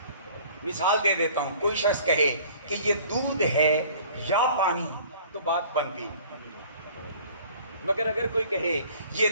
مثال دے دیتا ہوں، کوئی شخص کہے کہ یہ دودھ ہے یا پانی تو بات بنتی، مگر اگر کوئی کہے یہ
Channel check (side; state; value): both; inverted; correlation -0.50